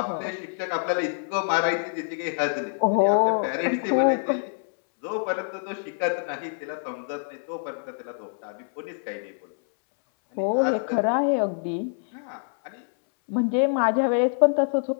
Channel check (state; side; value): silent; right; 61 dB below the other